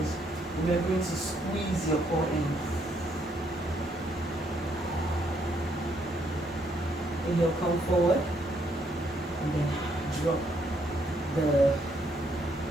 remembering to squeeze your core in. Inhale, come forward, and then drop the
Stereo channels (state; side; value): normal; both; correlation 0.72